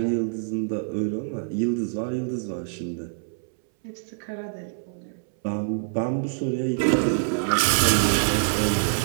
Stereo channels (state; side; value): silent; left; 61 dB below the other